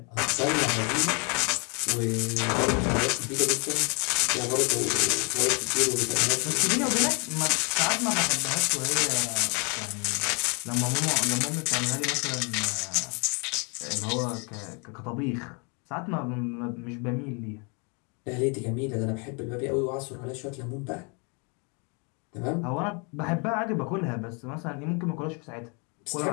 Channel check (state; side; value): quieter; right; 34.2 dB